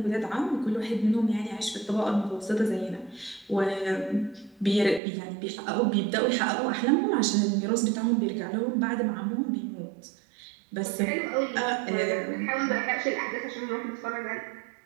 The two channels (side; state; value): left; drops out; at 5.0 s